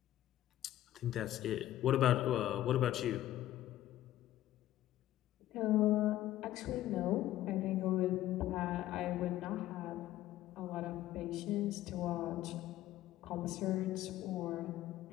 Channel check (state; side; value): quieter; right; 13.8 dB